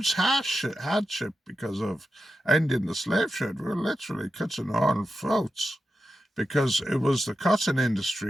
hardship because of ending the slave trade. We were literally cutting our own throats because it was the cotton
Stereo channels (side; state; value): both; normal; correlation 0.89